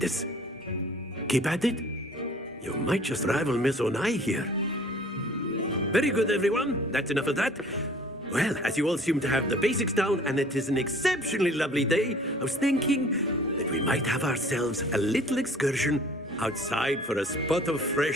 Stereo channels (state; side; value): normal; both; correlation 0.51